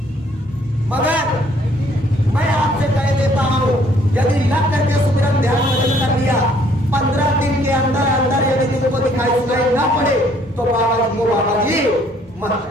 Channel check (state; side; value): normal; both; correlation 0.63